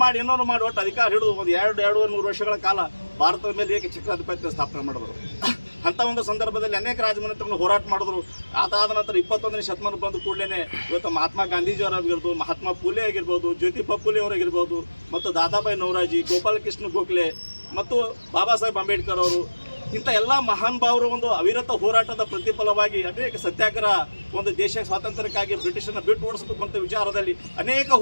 ಮಾಡಿ ಏನೋ ಮಾಡಿ ಒಟ್ಟು ಅಧಿಕಾರ ಹಿಡಿದು ಒಂದು 200-200 ವರ್ಷಗಳ ಕಾಲ ಭಾರತದ ಮೇಲೆ ಏಕೆ ಚಕ್ರಾಧಿಪತ್ಯ ಸ್ಥಾಪನೆ ಮಾಡಿದ್ರು. ಅಂಥ ಒಂದು ಸಂದರ್ಭದಲ್ಲಿ ಅನೇಕ ರಾಜಮನೆತನಗಳು ಹೋರಾಟ ಮಾಡಿದ್ರು. ಅದಾದ ನಂತರ 21ನೇ ಶತಮಾನ ಬಂದ ಕೂಡಲೇ ಇವತ್ತು ಮಹಾತ್ಮ ಗಾಂಧೀಜಿಯವರಾಗಿರ್ಬೋದು, ಮಹಾತ್ಮ ಫೂಲೆ ಆಗಿರ್ಬೋದು, ಜ್ಯೋತಿಬಾ ಫೂಲೆ ಅವರಾಗಿರ್ಬೋದು, ಮತ್ತು ದಾದಾಬಾಯಿ ನವರಾಜಿ, ಗೋಪಾಲಕೃಷ್ಣ ಗೋಖಲೆ ಮತ್ತು ಬಾಬಾ ಸಾಹೇಬ್ ಅಂಬೇಡ್ಕರ್ ಅವರು, ಇಂಥ ಎಲ್ಲ ಮಹಾನ್ ಭಾವರು ಒಂದು ಅವಿರತ ಹೋರಾಟದ ಪ್ರತಿಫಲವಾಗಿ ಅನೇಕ ಸತ್ಯಾಗ್ರಹ, ಒಂದು ದೇಶ ಸ್ವಾತಂತ್ರ್ಯಕ್ಕಾಗಿ ಬ್ರಿಟಿಷರನ್ನ ಬಿಟ್ಟು ಓಡಿಸಬೇಕು ಅಂತ ವಿಚಾರದಲ್ಲಿ ಅನೇಕ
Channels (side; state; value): both; inverted; correlation -1.00